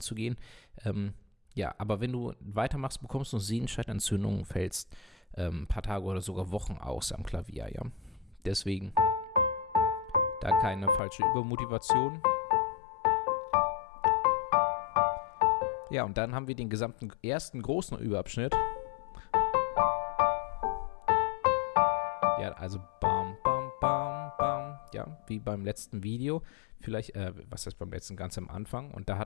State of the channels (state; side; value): drops out; right; at 11.0 s